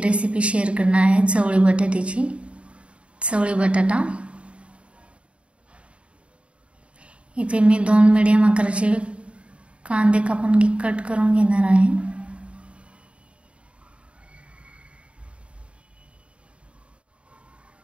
शेअर करणार आहे, चवळी बटाट्याची. चवळी बटाटा इथे मी 2 मीडियम आकाराचे कांदे कापून कट करून घेणार आहे.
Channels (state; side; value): late; left; 0.060 ms